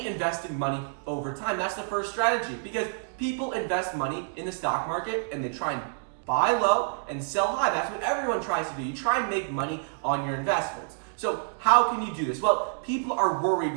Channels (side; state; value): left; silent; digital silence